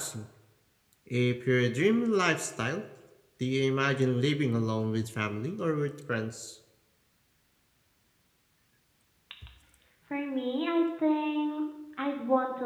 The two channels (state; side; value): identical; both; correlation 1.00